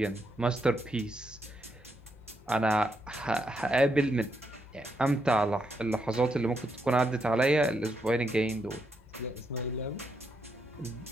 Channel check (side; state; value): both; normal; correlation 0.80